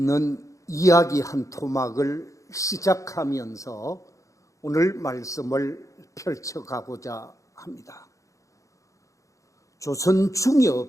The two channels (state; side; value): late; right; 0.15 ms